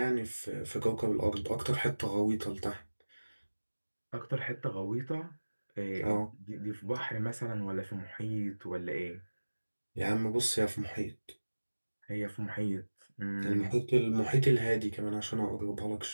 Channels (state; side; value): inverted; both; correlation -1.00